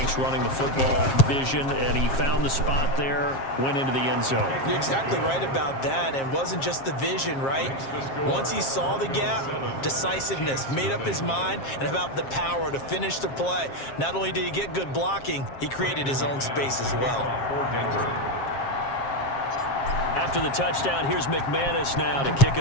running the football, vision, and he found the spot there, went into the end zone. You're exactly right about that, and wasn't just the vision, right? Once he saw the gap, decisiveness, made up his mind, and about the power to finish the play. Not only did he get good blocking, he created his own space as well. After the touchdown, here's McManus now to kick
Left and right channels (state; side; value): late; right; 7.5 ms